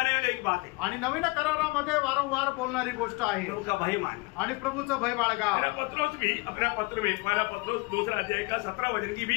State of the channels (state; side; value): quieter; right; 25.2 dB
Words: वाली एक बात है. आणि नवीन करारामध्ये वारंवार बोलणारी गोष्ट आहे. प्रभु का भय मान. आणि प्रभूचं भय बाळगा. मेरा पत्रोस भी अपना पत्र में पहला पत्रोस 2 अध्याय का 17 वचन की